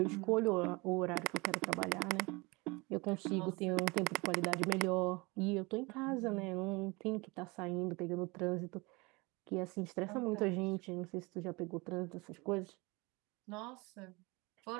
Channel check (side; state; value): left; quieter; 25.7 dB